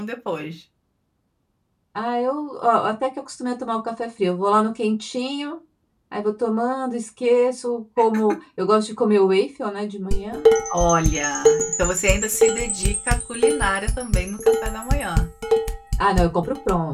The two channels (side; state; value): both; identical; correlation 1.00